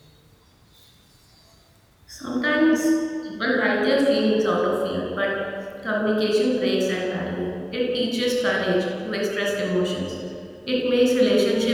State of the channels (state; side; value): identical; both; correlation 1.00